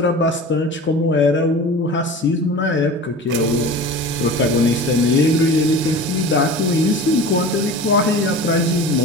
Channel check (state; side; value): normal; both; correlation 0.36